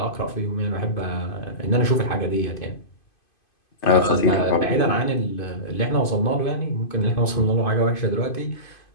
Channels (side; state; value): right; late; 2.5 ms